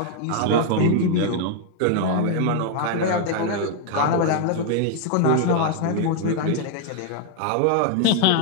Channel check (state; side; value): different; both; correlation 0.00